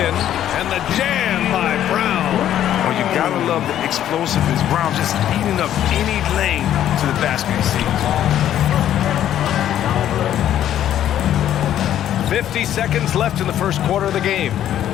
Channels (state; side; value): quieter; right; 11.3 dB